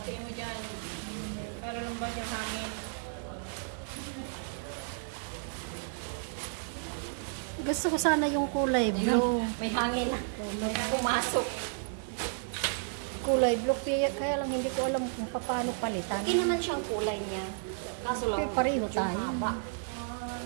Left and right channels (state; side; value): silent; left; digital silence